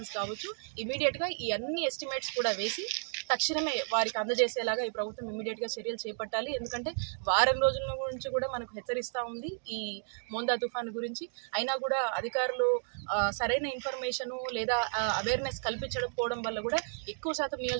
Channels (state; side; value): silent; left; digital silence